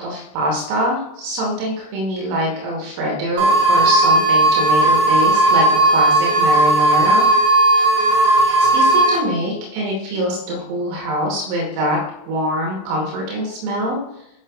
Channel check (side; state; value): left; late; 26 ms